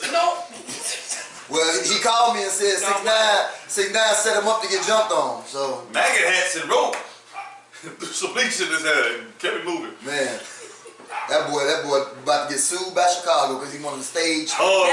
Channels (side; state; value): both; identical; correlation 1.00